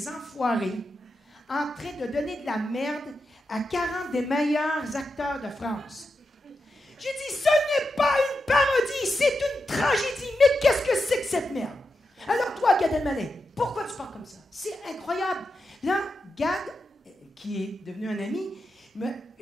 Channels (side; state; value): both; normal; correlation 0.88